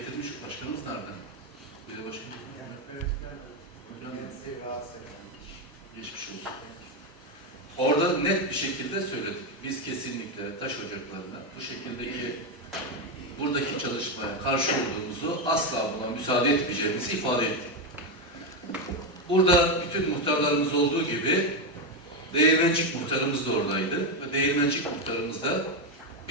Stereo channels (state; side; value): normal; both; correlation 0.08